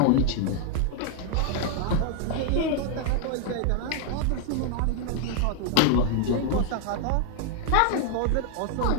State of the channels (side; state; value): both; different; correlation 0.00